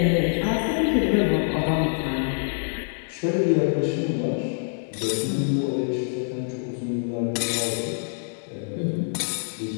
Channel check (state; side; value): silent; right; digital silence